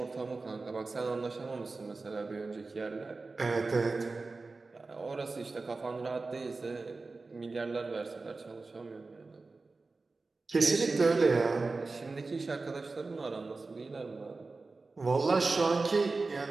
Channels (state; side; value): quieter; left; 3.8 dB